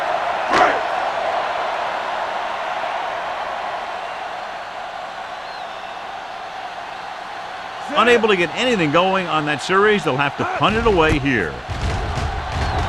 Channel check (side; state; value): both; identical; correlation 1.00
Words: Unable to get anything going on that series, they'll have to punt it away here.